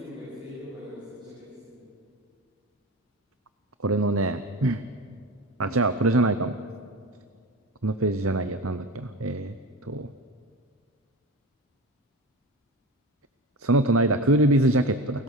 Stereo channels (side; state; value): both; normal; correlation 0.27